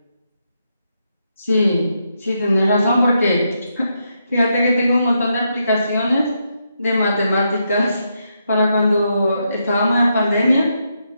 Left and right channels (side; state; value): both; inverted; correlation -0.81